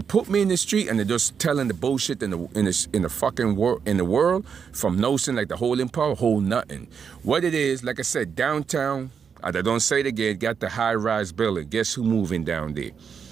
put me in the street and they're just telling the bullshit in the fucking world from notion like the holding power, hold nothing. What it is, like I said, downtown, I don't say it again, got the high-rise building. Guess who moving down there?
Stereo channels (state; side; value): quieter; left; 6.7 dB